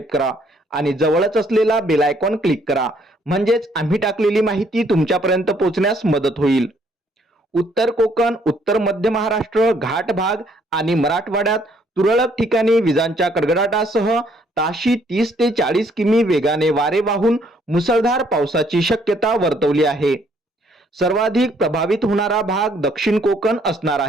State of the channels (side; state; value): both; normal; correlation 0.66